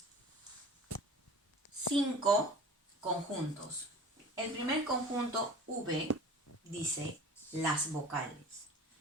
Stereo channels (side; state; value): both; normal; correlation 0.41